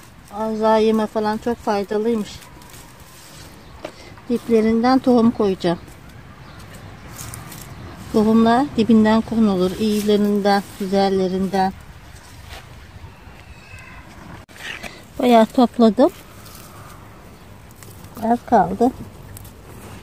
Alzheimer falan çok faydalıymış. Diplerinden tohum koyacağım. Tohumlar dibinden konulur. İyilerinden, güzellerinden. Bayağı topladım. Az kaldı.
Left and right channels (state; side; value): identical; both; correlation 1.00